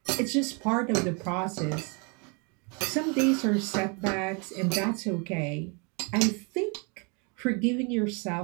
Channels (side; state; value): left; quieter; 33.5 dB